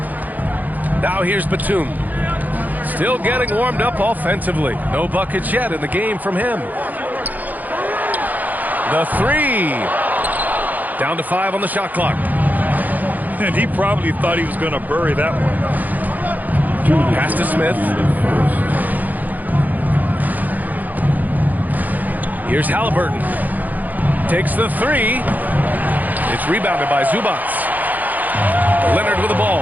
Now here's Batum. Still getting warmed up offensively. No buckets yet in the game from him. The three. Down to 5 on the shot clock. And he probably thought he was going to bury that one. Pass to Smith. Here's Halliburton. Takes the three. It's rebounded by Zubac. Leonard with the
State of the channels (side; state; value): left; late; 0.082 ms